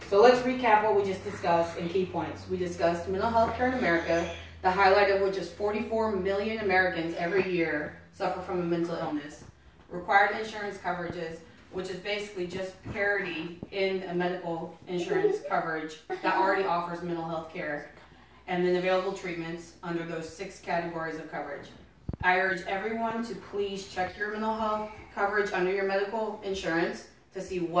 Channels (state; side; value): identical; both; correlation 1.00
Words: So let's recap what we just discussed in key points. We discussed mental health care in America, the highlight of which is 44 million Americans every year suffer from a mental illness. Required insurance coverages, which is basically just parity in a medical insurance coverage that already offers mental health care. And then available treatments under those 6 categories of coverage. I urge everyone to please check your mental health coverage under your medical insurance to see